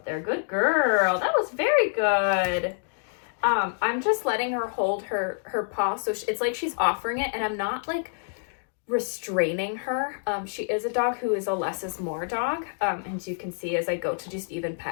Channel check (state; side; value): silent; right; digital silence